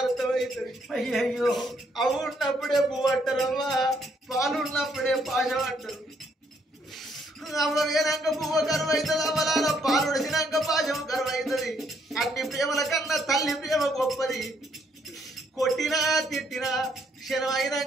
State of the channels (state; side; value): normal; both; correlation 0.70